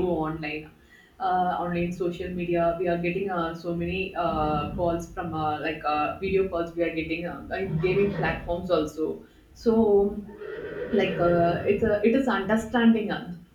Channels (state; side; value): identical; both; correlation 1.00